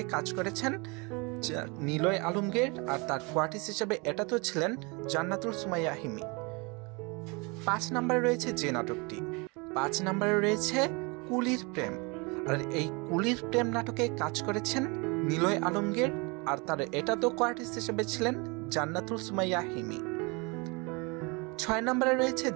কাজ করেছেন নিলয় আলমগীর, আর তার কোয়ার্টিস হিসাবে এটাতেও ছিলেন জান্নাতুল সুমাইয়া হিমি। 5 নাম্বারে রয়েছে যে নাটকটি, 5 নাম্বারে রয়েছে কুলির প্রেম। আর এই কুলির প্রেম নাটকে কাজ করেছেন নিলয় আলমগীর, আর তার এটাতেও কোয়ার্টিস হিসেবে ছিলেন জান্নাতুল সুমাইয়া হিমি। 6 নাম্বারে রয়েছে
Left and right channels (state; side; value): quieter; left; 28.9 dB